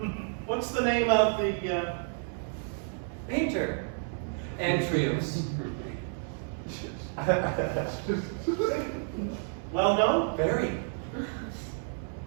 What's the name of the, Painter. Antrios. well known? Very.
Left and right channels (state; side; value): silent; left; 58 dB below the other